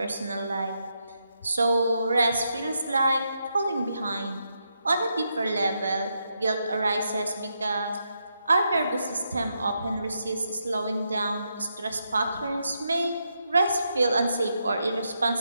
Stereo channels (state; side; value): inverted; both; correlation -0.82